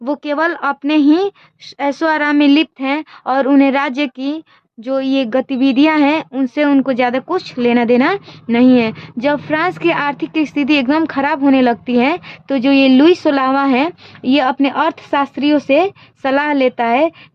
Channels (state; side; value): identical; both; correlation 1.00